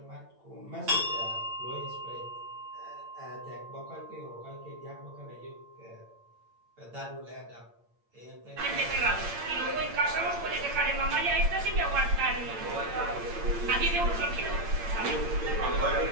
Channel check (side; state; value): left; late; 8.8 ms